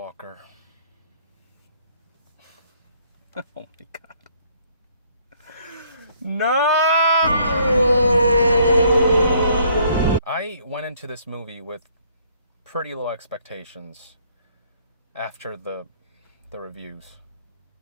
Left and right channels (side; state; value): both; inverted; correlation -0.64